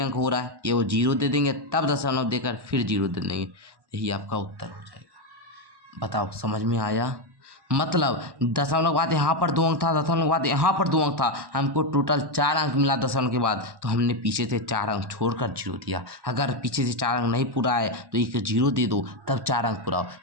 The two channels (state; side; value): late; left; 1.1 ms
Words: हो रहा है, ये वो 0 दे देंगे, तब दशमलव देकर फिर 0 दे देंगे। यही आपका उत्तर हो जाएगा। बताओ समझ में आया? मतलब दशमलव के बाद यहाँ पर 2 अंक था, दशमलव के बाद यहाँ पर 2 अंक था, हमको टोटल 4 अंक मिला दशमलव के बाद, तो हमने पीछे से 4 अंक छोड़कर 0 दिया। अगर पीछे से 4 अंक नहीं पूरा है तो एक 0 दे दो, तब 4 अंक पूरा हो।